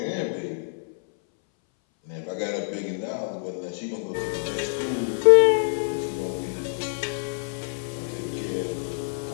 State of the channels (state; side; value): silent; right; 60 dB below the other